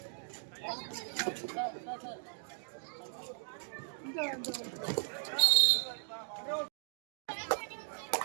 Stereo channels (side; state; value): left; silent; digital silence